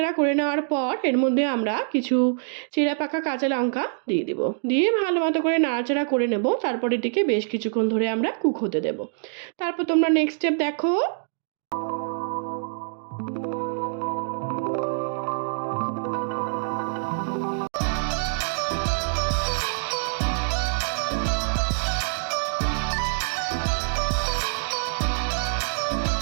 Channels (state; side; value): silent; left; digital silence